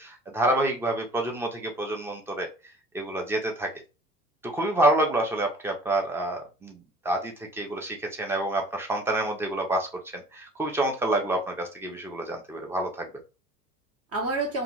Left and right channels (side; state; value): both; normal; correlation 0.49